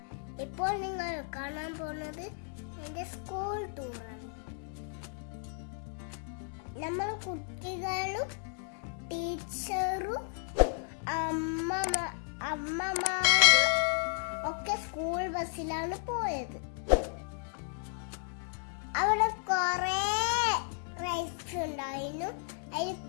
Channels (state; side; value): silent; right; 55 dB below the other